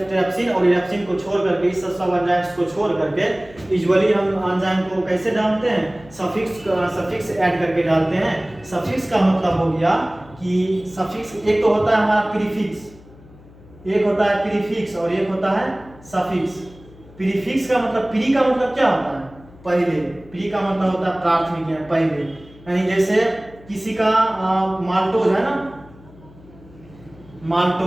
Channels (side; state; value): left; noise; hum, 23 dB below the sound